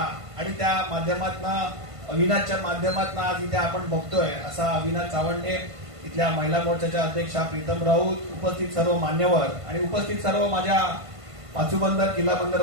आणि त्या माध्यमातून अविनाशच्या माध्यमातून आज इथे आपण बघतोय असा अविनाश चावंडे, इथल्या महिला मोर्चाच्या अध्यक्षा प्रीतम राऊत, उपस्थित सर्व मान्यवर आणि उपस्थित सर्व माझ्या पाचूबंदर किल्ला बंदर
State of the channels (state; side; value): late; left; 1.5 ms